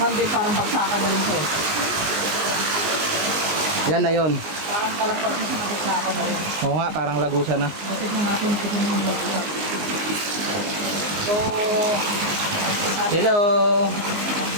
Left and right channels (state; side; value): late; left; 19 ms